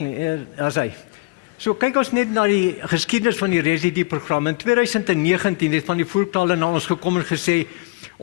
as hy. So kyk ons net na die geskiedenis van die residue-program. In 2019 het van die voerkrale na ons gekom en gesê,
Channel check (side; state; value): right; quieter; 25.6 dB